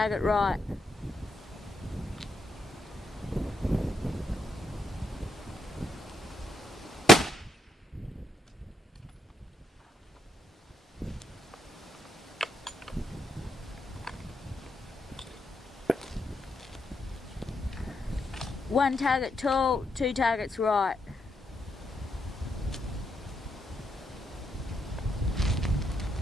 right. One target tall, 2 targets right.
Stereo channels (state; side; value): normal; both; correlation 0.79